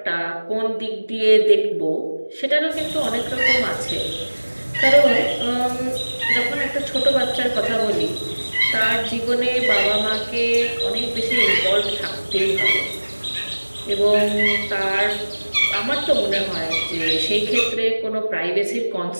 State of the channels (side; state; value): both; inverted; correlation -1.00